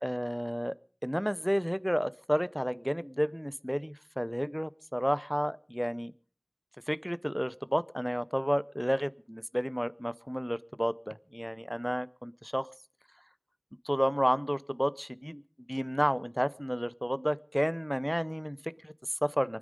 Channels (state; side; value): identical; both; correlation 1.00